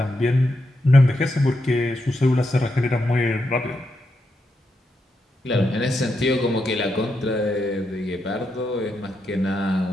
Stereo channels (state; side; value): normal; both; correlation 0.84